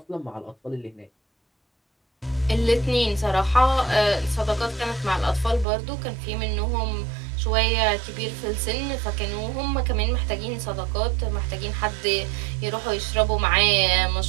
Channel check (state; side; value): drops out; left; at 5.7 s